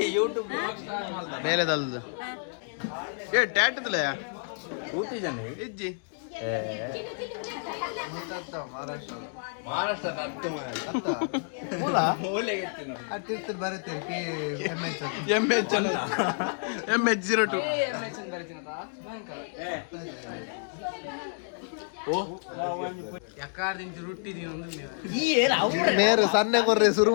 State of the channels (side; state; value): right; silent; 58 dB below the other